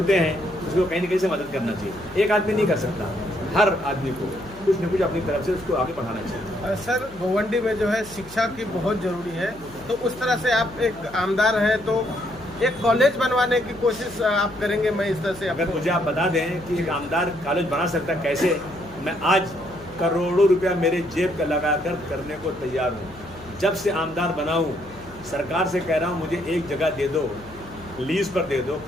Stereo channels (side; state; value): left; noise; hum, 20 dB below the sound